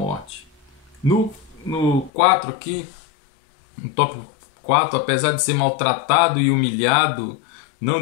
No 4 aqui, no tópico 4, apesar de ser maltratado e humilhado, não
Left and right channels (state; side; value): drops out; right; at 2.1 s